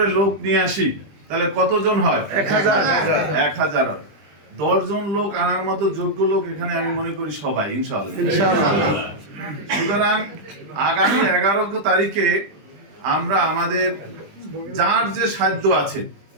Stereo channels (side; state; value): left; late; 20 ms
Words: লোক নিয়ে আসি, তাহলে কতজন হয়? 1000। 10 জন লোক আনার মতো যোগ্য লোক এখানে আমি মনে করি সবাই, ইনশাআল্লাহ। সুতরাং আগামী 11 তারিখে আমরা আমাদের যার যে সাধ্য আছে